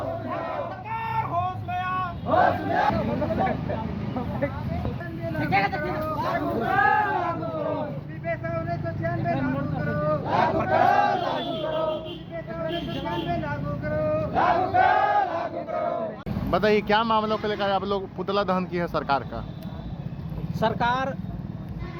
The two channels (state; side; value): identical; both; correlation 1.00